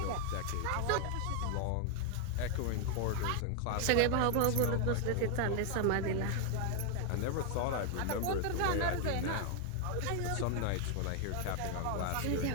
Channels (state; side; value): different; both; correlation 0.00